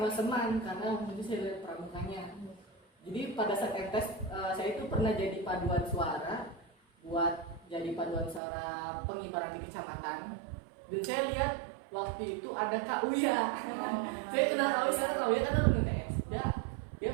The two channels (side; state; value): left; drops out; at 8.4 s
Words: Seman, karena waktu itu saya lihat pramukanya. Jadi pada saat MTS saya itu pernah jadi paduan suara, buat jadi paduan suara pengibaran di kecamatan. Dan saya lihat waktu itu ada Kak Uya. Saya kenal Kak Uya, karena Kak Uya kan ada MTS.